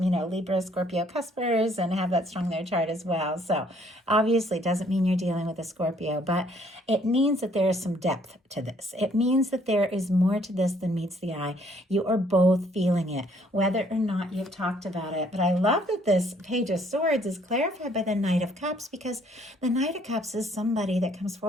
Libra, Scorpio cuspers and have that strong in their chart as well. So obviously it doesn't mean you're dealing with a Scorpio, but it means that there is some depth to this. It means that there is more to this than meets the eye. You are both feeling it, whether or not you've talked about it. But I love that this Page of Swords is clarified by the Knight of Cups, because the Knight of Cups is somebody that comes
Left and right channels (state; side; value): normal; both; correlation 0.64